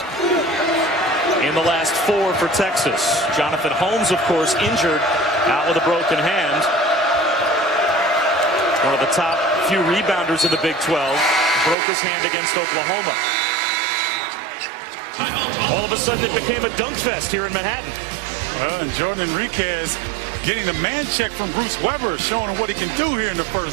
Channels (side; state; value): left; drops out; at 11.8 s